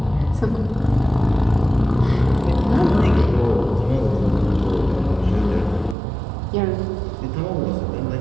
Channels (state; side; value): drops out; left; at 6.0 s